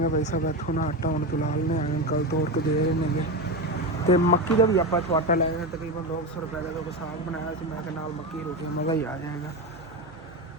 ਭਾਈ ਸਾਹਿਬ, ਇੱਥੋਂ ਨਾ ਆਟਾ ਹੁਣ ਫਿਲਹਾਲ ਨੇ ਆਏ ਅੰਕਲ ਤੋੜ ਕੇ ਦੇ ਰਹੇ ਨੇਗੇ। ਤੇ ਮੱਕੀ ਦਾ ਵੀ ਆਪਾਂ ਇੱਥੋਂ ਆਟਾ ਲੈ ਗਏ, ਤਕਰੀਬਨ 200 ਰੁਪਏ ਦਾ ਕੋਈ ਸਾਗ ਬਣਾਇਆ ਸੀ ਮੈਂ, ਕਿ ਨਾਲ ਮੱਕੀ ਰੋਟੀ ਮਜ਼ਾ ਹੀ ਆ ਜਾਏਗਾ।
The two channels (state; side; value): normal; both; correlation 0.18